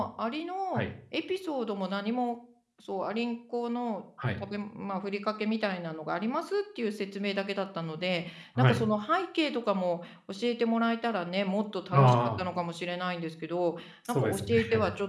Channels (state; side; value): identical; both; correlation 1.00